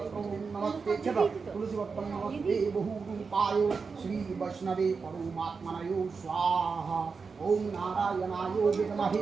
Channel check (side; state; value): left; quieter; 5.0 dB